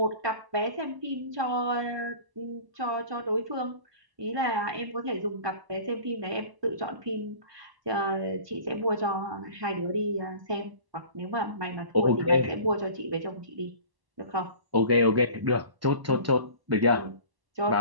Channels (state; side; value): late; left; 1.0 ms